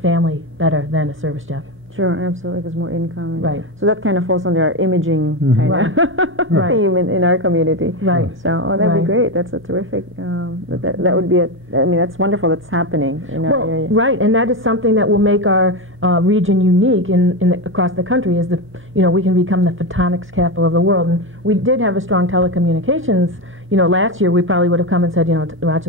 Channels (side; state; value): right; noise; hum, 29 dB below the sound